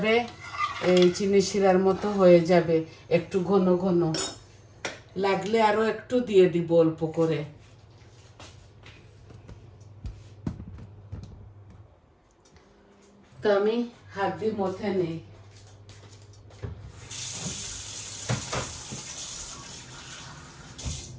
এই চিনি শিরার মতো হয়ে যাবে, একটু ঘন ঘন লাগলে আরো একটু দিয়ে দিব অল্প করে। তো আমি হাত দিয়ে মথে নেই।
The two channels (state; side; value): identical; both; correlation 1.00